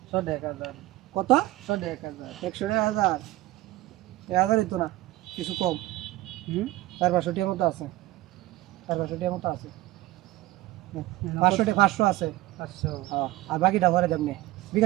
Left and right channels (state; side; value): quieter; left; 17.3 dB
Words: 100,000 কত 100,000 100,000 1000 তো না কিছু কম 400 টিয়ার মতো আছে 400 টিয়ার মতো আছে 500 আছে 500 হ্যাঁ আর বাকিটা ভরে দেবনে